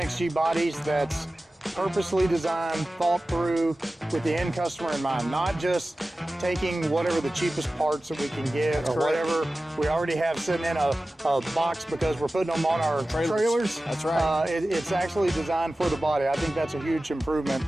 bodies that's purposely designed, thought through with the end customer in mind, not just taking whatever the cheapest parts that we can get or whatever we already have sitting in a box because we're putting them on our trailers. That's right. It's actually designed for the body. I think that's a huge improvement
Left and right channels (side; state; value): both; normal; correlation 0.96